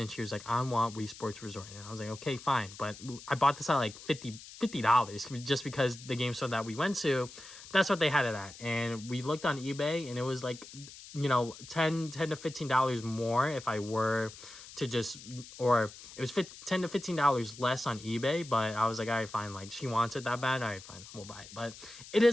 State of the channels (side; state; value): left; noise; hiss, 16 dB below the sound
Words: she was like, I want Wii Sports Resort. And I was like, okay, fine. But I bought this at like $50 just because the game store that we went to, that's what they had it at. And we looked on eBay, and it was like, you know, $10 to $15 more if I were to just, or it was $10 to $15 less on eBay, but I was like, all right, fine, like, she wants it that bad, all right, fine, we'll buy it. But it